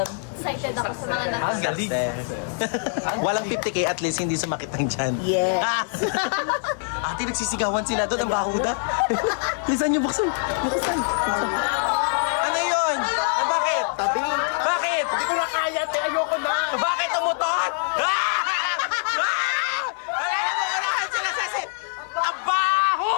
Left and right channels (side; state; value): right; silent; digital silence